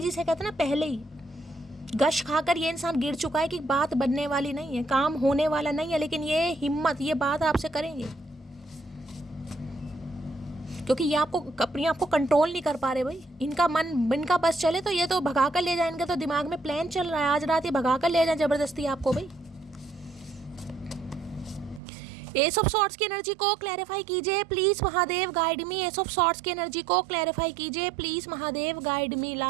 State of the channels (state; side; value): drops out; left; at 21.8 s